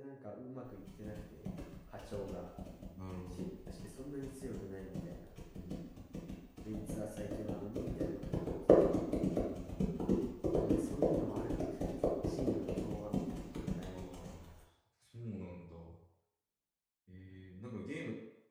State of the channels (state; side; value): identical; both; correlation 1.00